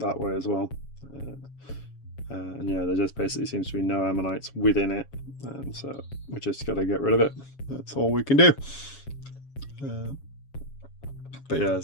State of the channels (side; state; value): right; late; 7.2 ms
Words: way as well. And yeah, there just basically seems to be no ammonites within it, and so we just got to get rid of it. That's all we can do. But yeah,